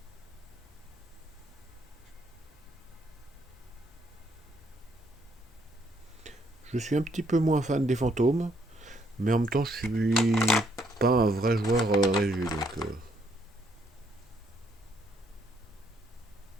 Je suis un petit peu moins fan des fantômes, mais en même temps, je suis pas un vrai joueur Réju, donc.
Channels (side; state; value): both; normal; correlation 0.70